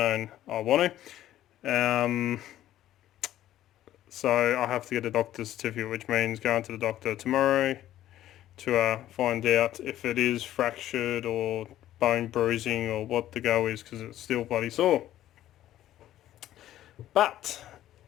I want to. So I have to get a doctor's certificate, which means going to the doctor tomorrow to find out if it is fractured or bone bruising or what the go is, because it's still bloody sore. But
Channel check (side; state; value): right; quieter; 13.1 dB